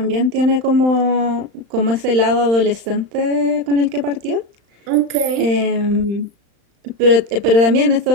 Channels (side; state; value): left; late; 35 ms